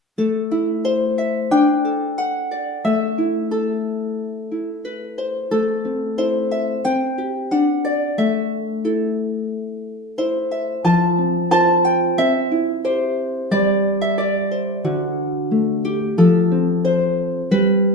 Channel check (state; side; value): normal; both; correlation 0.41